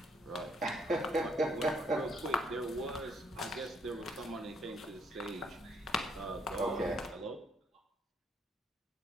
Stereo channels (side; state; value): both; normal; correlation 0.69